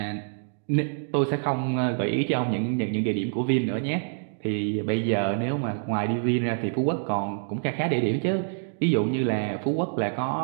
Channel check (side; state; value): left; silent; digital silence